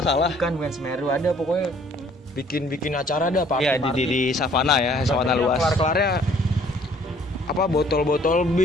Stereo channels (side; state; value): both; normal; correlation 0.58